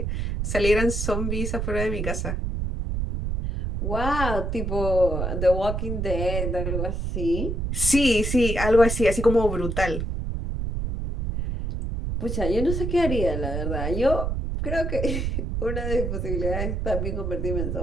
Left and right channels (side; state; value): right; noise; rumble, 2 dB below the sound